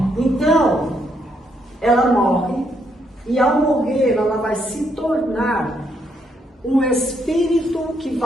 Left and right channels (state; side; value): normal; both; correlation 0.75